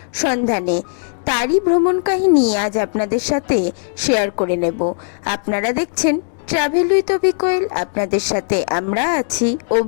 সন্ধানে। তারই ভ্রমণ কাহিনী আজ আপনাদের সাথে শেয়ার করে নেব। আপনারা দেখছেন ট্রাভেল উইথ অভি কোয়েল। আপনাদের সাথে আমরা আছি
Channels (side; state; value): right; silent; digital silence